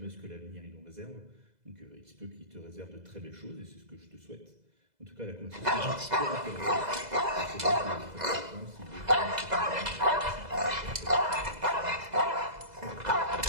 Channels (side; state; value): left; late; 2.0 ms